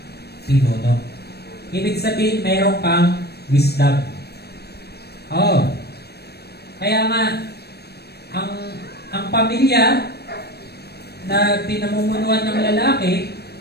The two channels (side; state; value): right; late; 0.47 ms